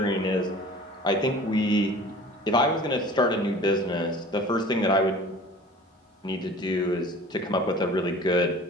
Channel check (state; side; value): normal; both; correlation 0.43